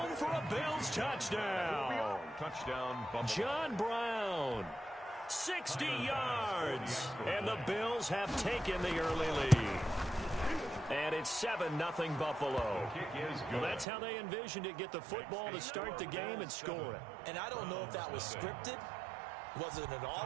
for a Bills touchdown. Touchdown, Buffalo. John Brown, 60 yards. And the Bills have taken the early lead. And it's 7-0 Buffalo. Well, that's how they envisioned it, get the football to start the game and score it. And I don't know if that was scripted. Was it an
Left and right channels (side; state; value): left; drops out; at 13.9 s